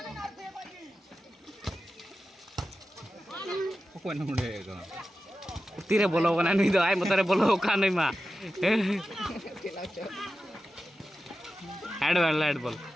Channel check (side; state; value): both; normal; correlation 0.93